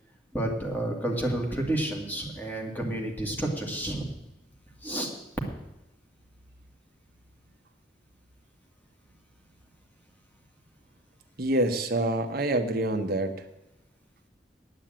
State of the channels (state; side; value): normal; both; correlation 0.45